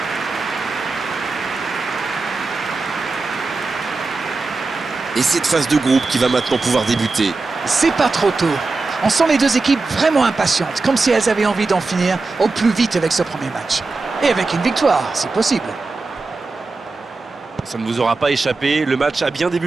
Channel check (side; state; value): left; quieter; 3.8 dB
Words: Et cette phase de groupe qui va maintenant pouvoir débuter. C'est pas trop tôt. On sent les deux équipes vraiment impatientes, comme si elles avaient envie d'en finir au plus vite avec ce premier match. Et avec une victoire, si possible. Ça ne vous aura pas échappé, le match a bien